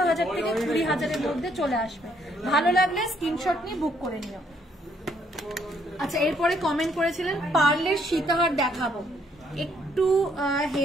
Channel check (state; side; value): normal; both; correlation 0.69